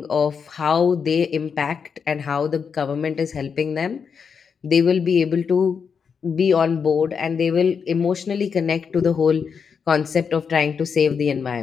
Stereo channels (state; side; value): quieter; right; 6.3 dB